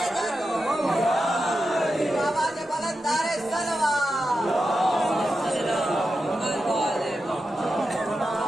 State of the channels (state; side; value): normal; both; correlation 0.89